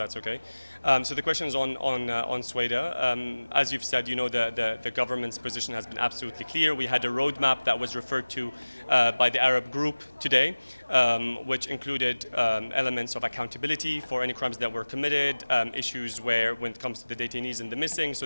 okay. So the question is on Sweda. As you've said, the government's position has been absolutely clear. We had a roadmap that was referred to by the Arab group today, which included elements of accountability for any crimes that were committed, issues when it comes to the detainees and the missing. So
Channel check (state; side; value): inverted; both; correlation -1.00